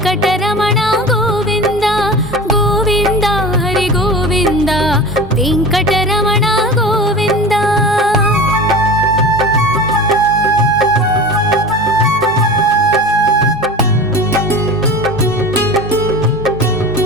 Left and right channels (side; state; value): both; normal; correlation 0.33